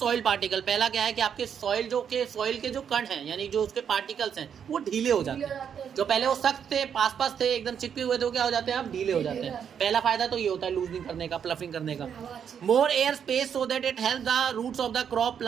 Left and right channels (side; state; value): left; quieter; 7.9 dB